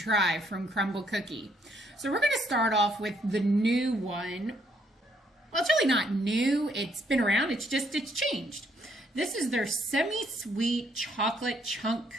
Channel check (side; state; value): both; normal; correlation 0.70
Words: from Crumbl Cookie. So we're going to start off with the new one. Well, it's really not new. It's been around. It's changed. This is their semi-sweet chocolate chunk